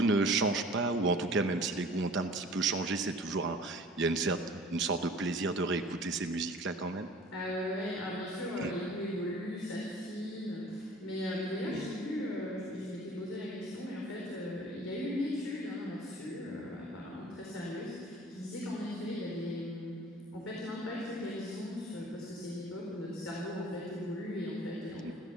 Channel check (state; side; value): normal; both; correlation 0.47